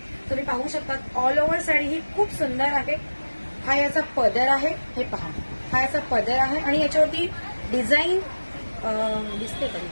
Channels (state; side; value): inverted; both; correlation -1.00